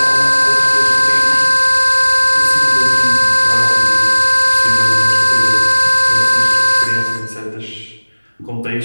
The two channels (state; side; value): inverted; both; correlation -1.00